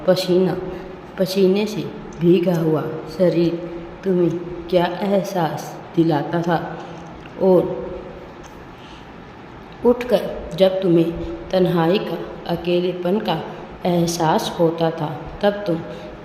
पसीना, पसीने से भीगा हुआ शरीर तुम्हें क्या एहसास दिलाता था? और उठकर जब तुम्हें तन्हाई का, अकेलेपन का एहसास होता था, तब तुम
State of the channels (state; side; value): identical; both; correlation 1.00